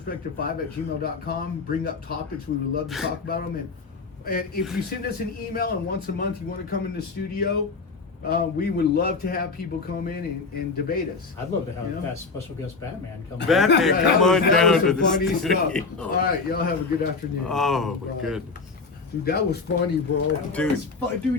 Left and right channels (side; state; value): right; quieter; 4.4 dB